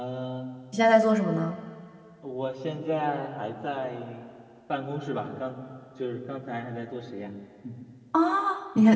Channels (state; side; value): identical; both; correlation 1.00